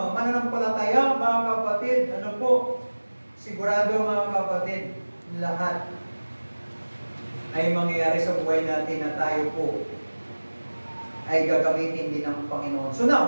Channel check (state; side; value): inverted; both; correlation -1.00